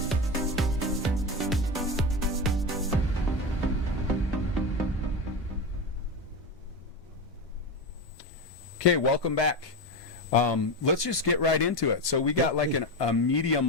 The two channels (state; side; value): normal; both; correlation 0.18